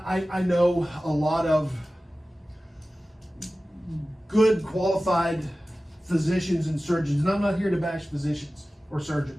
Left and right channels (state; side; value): normal; both; correlation 0.96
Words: know a lot of good qualified physicians and surgeons, and I'm not here to bash physicians or